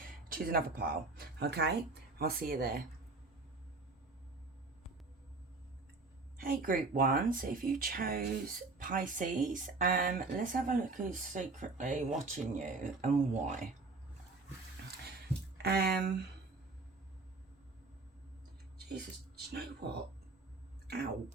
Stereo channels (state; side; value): quieter; left; 3.6 dB